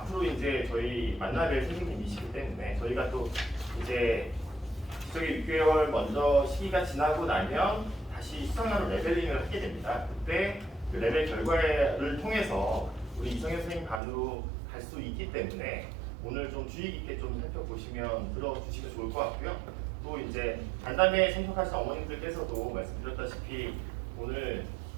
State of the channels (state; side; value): drops out; left; at 14.0 s